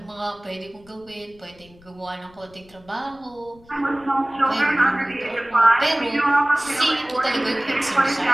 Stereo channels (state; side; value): noise; left; rumble, 26 dB below the sound